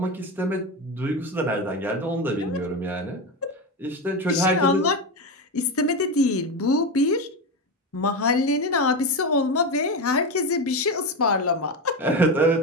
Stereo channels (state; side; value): normal; both; correlation 0.16